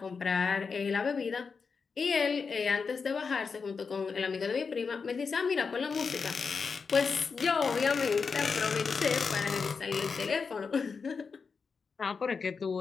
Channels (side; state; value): right; quieter; 5.2 dB